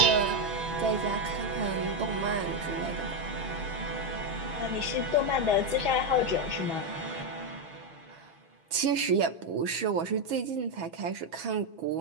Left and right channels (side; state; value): left; late; 6.1 ms